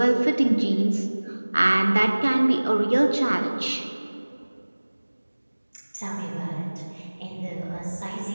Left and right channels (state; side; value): inverted; both; correlation -1.00